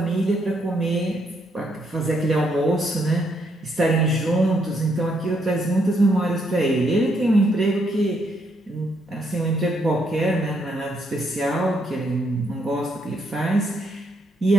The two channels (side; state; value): both; normal; correlation 0.75